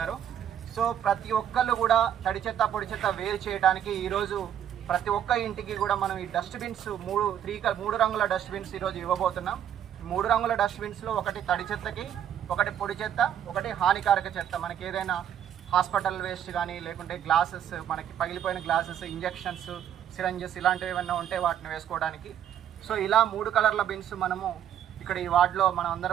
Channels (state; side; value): quieter; left; 9.8 dB